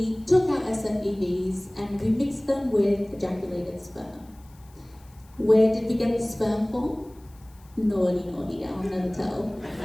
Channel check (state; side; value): noise; left; hiss, 30 dB below the sound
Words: took our SFEVs and we mixed them with ejaculated sperm. Where did we get the sperm from? Naughty, I'll never tell.